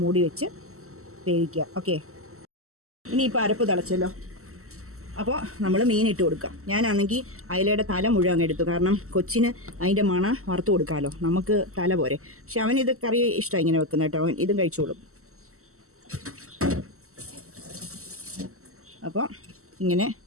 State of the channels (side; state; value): left; late; 0.63 ms